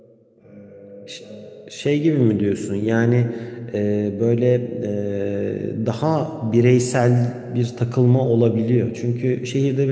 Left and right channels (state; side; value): identical; both; correlation 1.00